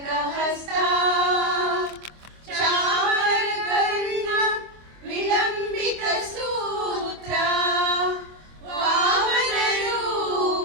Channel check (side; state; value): left; late; 25 ms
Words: ಹಸ್ತ ಚಾಮರ ಕರ್ಣ ವಿಳಂಬಿತ ಸೂತ್ರ ವಾಮನ